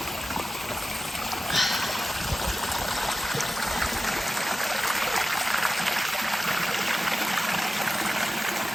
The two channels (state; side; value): normal; both; correlation 0.95